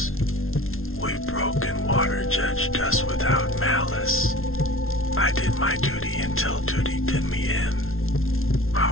We broke and water judged us without malice. I did my duty until duty did me in.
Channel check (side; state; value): right; late; 0.61 ms